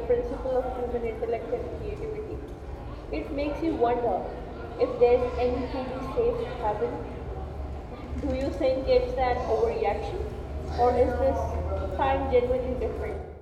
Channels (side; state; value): both; identical; correlation 1.00